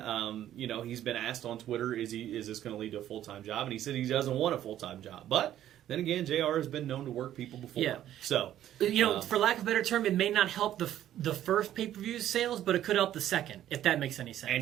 He's been asked on Twitter, is this going to lead to a full-time job? And he said he doesn't want a full-time job, but then again, JR has been known to work people before. Yeah. So, for lack of a better term, it may not help the first pay-per-view sales, but it could help the second, if that makes any sense. and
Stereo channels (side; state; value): left; quieter; 11.9 dB